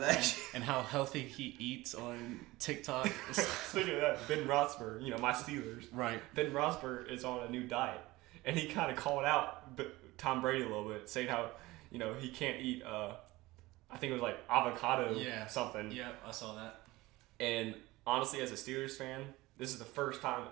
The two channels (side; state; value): left; quieter; 19.7 dB